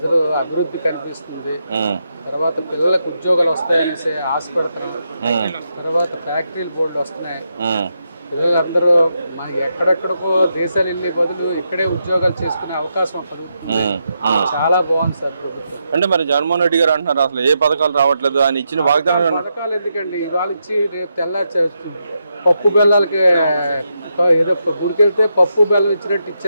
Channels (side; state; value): both; inverted; correlation -0.83